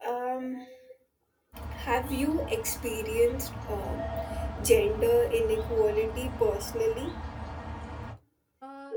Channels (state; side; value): identical; both; correlation 1.00